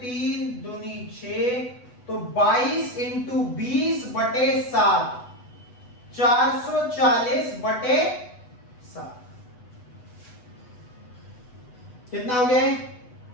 दूनी 6, तो 22 इंटू 20/7, 440/7 कितना हो गया?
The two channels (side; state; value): right; late; 8.1 ms